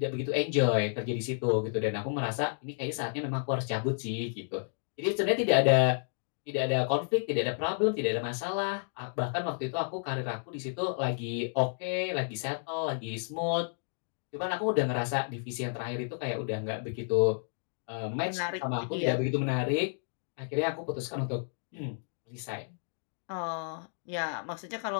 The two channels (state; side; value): silent; right; digital silence